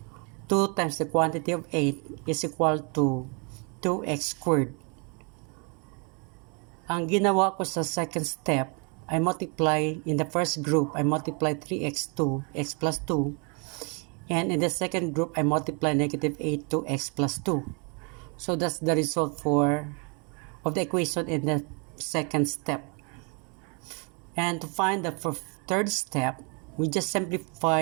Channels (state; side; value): quieter; left; 34.7 dB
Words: 2 times the quantity of 8 is equal to 2x squared. Ang ginawa ko sa second step, I multiply in the first group, I multiply 3x2, x plus 2. And in the second group, I multiply negative 8 to x plus 2. So that's the result of the equation in the second step. And to find the third step, we just